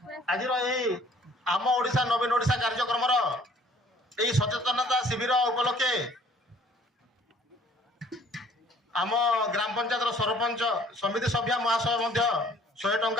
ଆଜିର ଏହି ଆମ ଓଡ଼ିଶା ନବୀନ ଓଡ଼ିଶା କାର୍ଯ୍ୟକ୍ରମର ଏହି ସଚେତନତା ଶିବିର ଉପଲକ୍ଷେ ଆମ ଗ୍ରାମ ପଞ୍ଚାୟତର ସରପଞ୍ଚ ସମିତି ସଭ୍ୟା ମହାଶୟ ମଧ୍ୟ 100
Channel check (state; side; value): normal; both; correlation 0.56